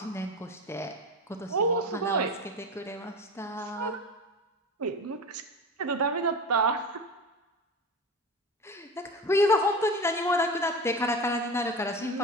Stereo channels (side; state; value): both; normal; correlation 0.28